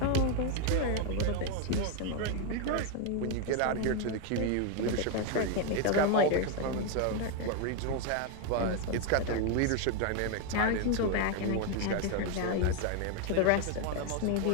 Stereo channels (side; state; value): both; different; correlation 0.01